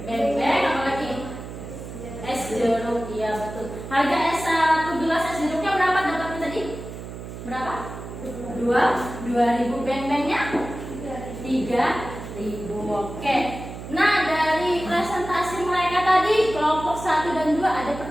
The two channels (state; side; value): noise; right; hum, 11 dB below the sound